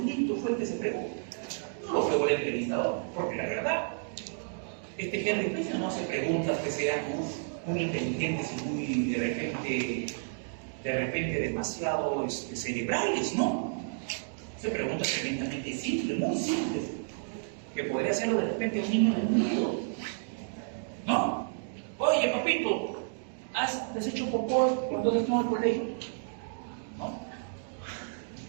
fue el que se fregó. No lo fregó el entrevistador, porque la verdad, este Henry Spencer no hace preguntas que sean muy inteligentes y muy de repente demasiado cerebrales, ¿no? Hace preguntas tremendamente simples, muy simples, que podría hacerlo de repente un niño del mundo, ¿no? Oye, papito, ¿has hecho popó cuando estás en el colegio? ¿No?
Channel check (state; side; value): silent; left; digital silence